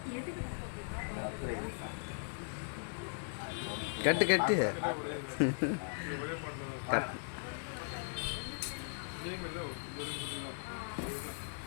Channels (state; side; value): silent; right; digital silence